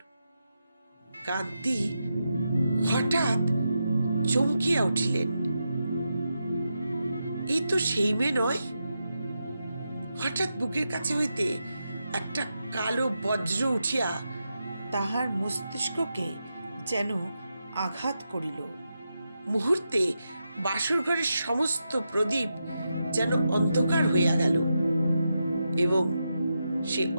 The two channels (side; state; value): both; inverted; correlation -0.87